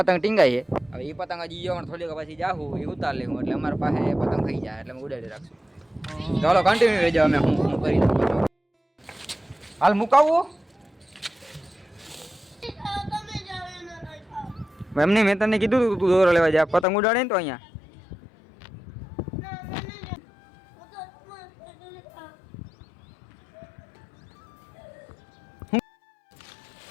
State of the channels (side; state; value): right; drops out; at 16.9 s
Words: ટીંગાય છે. હવે એ પતંગ હજી જવાનું થોડીક પછી જાહું એ ઉતાર લેવું એટલે અમારા પાસે પતંગ થઈ જાય એટલે અમે ઉડાડી રાખશું. ચાલો કન્ટિન્યુ રહેજો. અમે હું કરી દઉં. હાલ મુકાવવું એમને મેં તને કીધું તું દોરો લેવા જા પતંગ ઉડાડે ને તો અહીંયા.